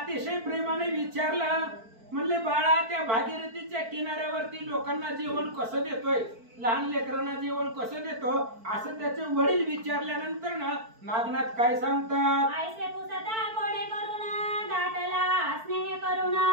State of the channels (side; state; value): left; late; 4.5 ms